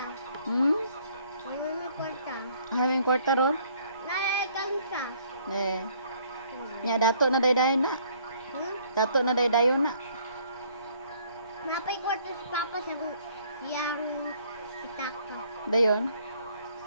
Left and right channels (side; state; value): both; inverted; correlation -0.62